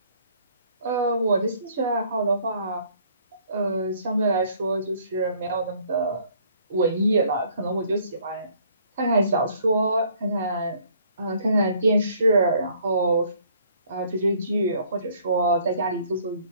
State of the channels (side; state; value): both; inverted; correlation -0.60